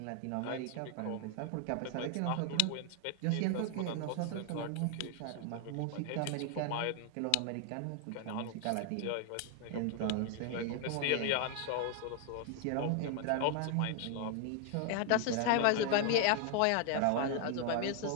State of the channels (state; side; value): different; both; correlation 0.00